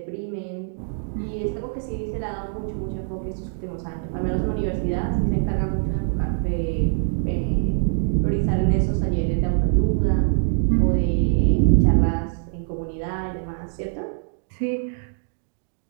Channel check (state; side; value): silent; left; digital silence